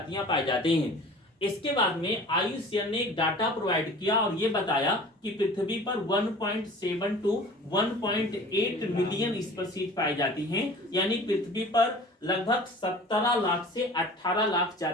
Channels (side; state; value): both; normal; correlation 0.43